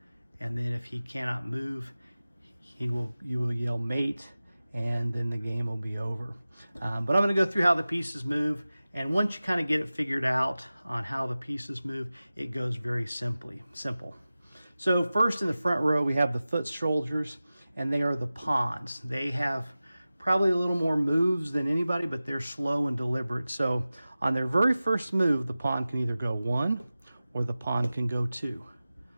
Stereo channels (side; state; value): both; inverted; correlation -0.96